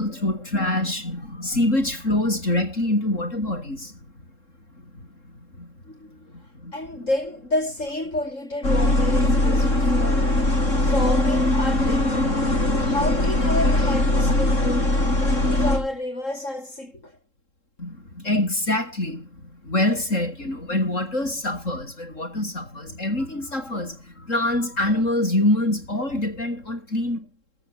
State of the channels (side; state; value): right; late; 3.7 ms